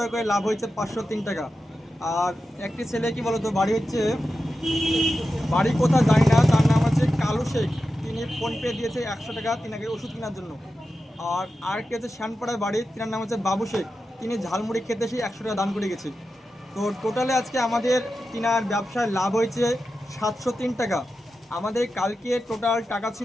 করে লাভ হয়েছে 503 টাকা। আর একটি ছেলে কি বলতো, বাড়ি হচ্ছে, বাড়ি কোথাও জানি না, তার নাম হচ্ছে কালু শেখ। তিনি ফোনপে দিয়েছে 100 টাকা তিনাকে ওষুধ কেনার জন্য। আর আরেকটি হচ্ছে শ্যানপাড়ার বাড়ি, তিনার নাম হচ্ছে বাবু শেখ। তিনি ঝালমুড়ি খেতে এসে 100 টাকা দান করে গেছে। তো টোটালে আজকে আমাদের তিনার ব্যবসায় লাভ হয়েছে 703 টাকা। আমাদের কালকে টোটাল টাকা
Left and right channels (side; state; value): both; normal; correlation 0.91